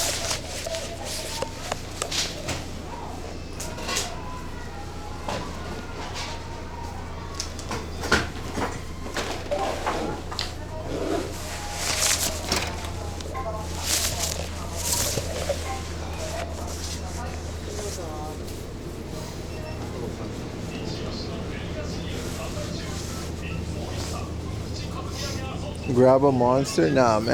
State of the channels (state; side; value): identical; both; correlation 1.00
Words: Grab a monster? Nah,